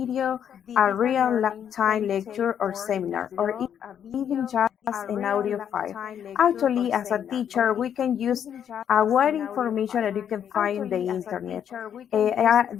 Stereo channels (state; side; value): quieter; right; 8.9 dB